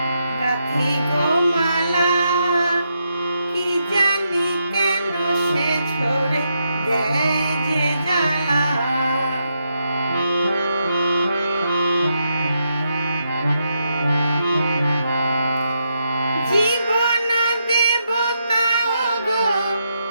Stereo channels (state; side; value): inverted; both; correlation -0.82